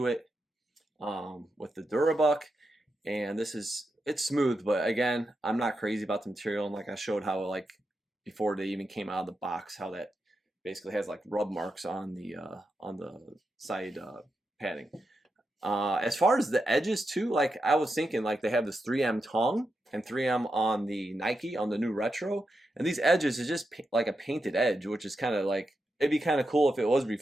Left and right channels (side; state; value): both; normal; correlation 0.87